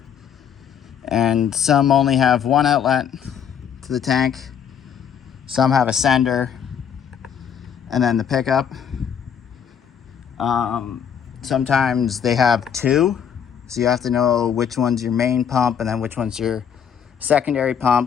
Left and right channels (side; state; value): right; quieter; 8.1 dB